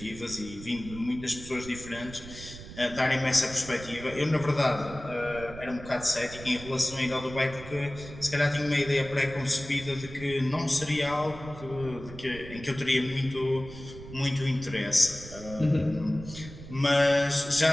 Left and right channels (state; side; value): noise; right; rumble, 14 dB below the sound